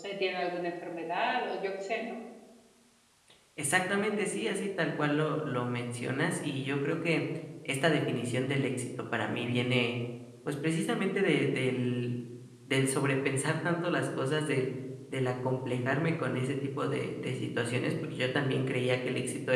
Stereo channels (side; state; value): both; identical; correlation 1.00